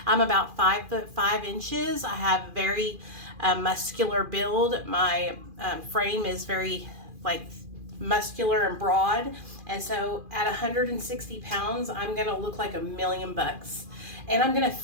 I'm about 5'5". I have a very muscular build. My frame is very muscular and broad, and so at 160 pounds I'm going to look like $1,000,000, and I'm going to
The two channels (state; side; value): late; left; 2.4 ms